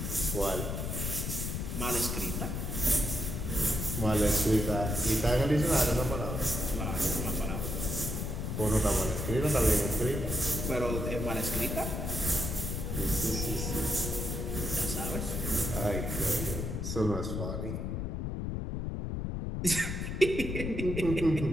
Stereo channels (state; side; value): noise; left; rumble, 3 dB below the sound